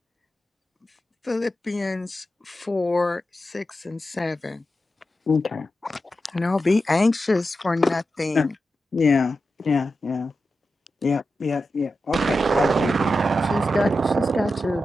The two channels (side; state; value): both; normal; correlation 0.91